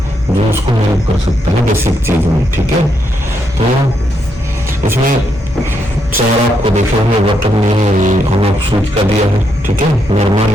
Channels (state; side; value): normal; both; correlation 0.78